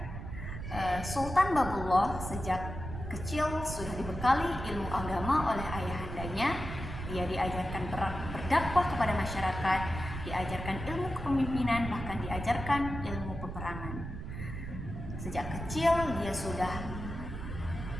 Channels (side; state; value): right; noise; rumble, 7 dB below the sound